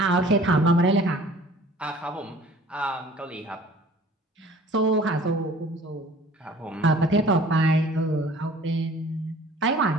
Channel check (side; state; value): both; normal; correlation 0.49